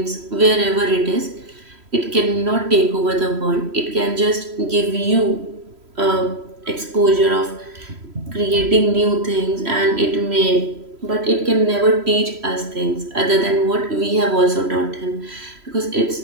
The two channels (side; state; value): left; late; 3.0 ms